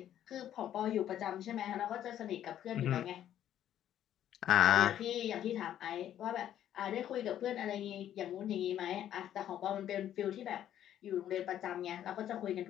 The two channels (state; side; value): quieter; right; 11.1 dB